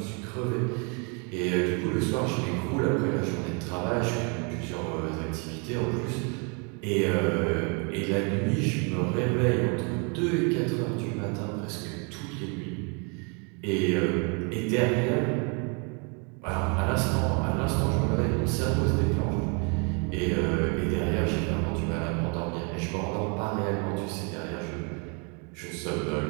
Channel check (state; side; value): quieter; left; 35.0 dB